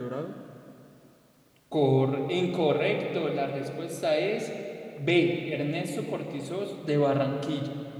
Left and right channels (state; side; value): identical; both; correlation 1.00